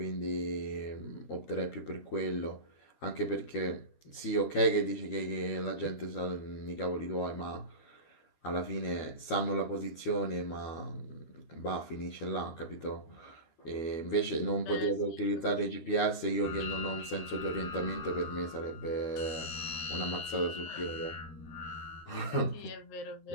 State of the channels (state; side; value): late; right; 13 ms